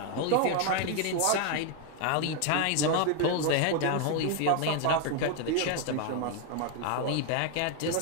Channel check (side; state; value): both; different; correlation 0.01